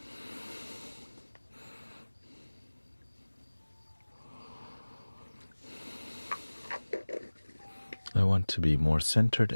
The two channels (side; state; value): both; inverted; correlation -1.00